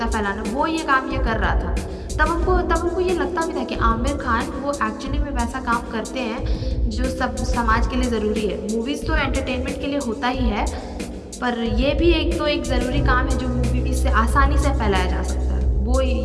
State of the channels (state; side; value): identical; both; correlation 1.00